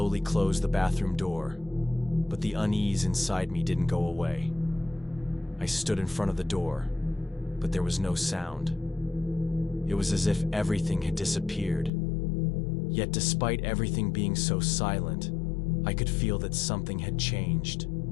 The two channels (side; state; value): right; drops out; at 11.9 s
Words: closed the bathroom door, but the unease inside me didn't go away. I stood in front of the door, but there was no sound. It was as if everything had disappeared. Yet despite everything being so silent, I could feel that something had changed.